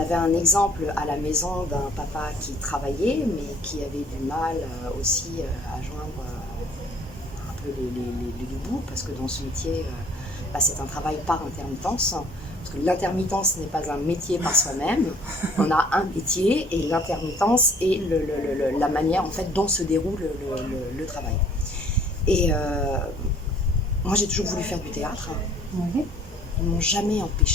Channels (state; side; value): normal; both; correlation 0.56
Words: un exemple à la maison d'un papa qui travaillait, mais qui avait du mal aussi à joindre un peu les deux bouts, parce que dans ce métier, c'est un travail par intermittence. Parce que l'intermittence n'est pas un métier par soi-même. On a un métier et l'intermittence est la manière en fait dont se déroule le travail. Et moi, j'ai toujours voulu faire du théâtre. Ouais. Ils ne m'ont jamais